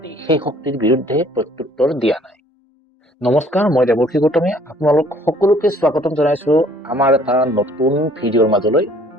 সেই শক্তিৰ বিৰুদ্ধে প্ৰত্যুত্তৰ দিয়া নাই। নমস্কাৰ, মই দেৱৰ্ষি গৌতমে আপোনালোক সকলোকে স্বাগতম জনাইছো আমাৰ এটা নতুন ভিডিঅ'ৰ মাজলৈ।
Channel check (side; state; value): both; normal; correlation 0.58